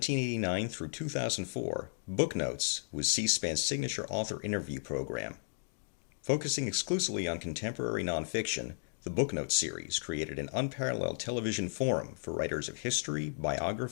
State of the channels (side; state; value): right; silent; digital silence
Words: through 2004, Booknotes was C-SPAN's signature author interview program. Focusing exclusively on contemporary nonfiction, the Booknotes series created an unparalleled television forum for writers of history,